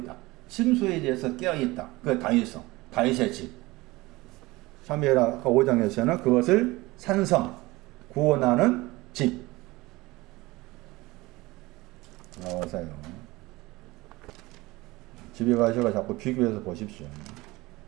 침소에 대해서 깨어있다. 그게 다윗성, 다윗의 집. 사무엘하 5장에서는 그것을 산성, 구원하는 집. 나와서요. 집에 가셔서 자꾸 비교해서 보십시오.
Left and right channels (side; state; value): left; quieter; 20.9 dB